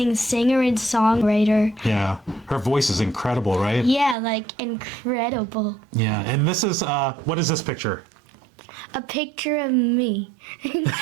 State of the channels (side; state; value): left; drops out; at 4.2 s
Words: singer and songwriter. Yeah. Her voice is incredible, right? Yeah, like incredible. Yeah. And this is, what is this picture? A picture of me.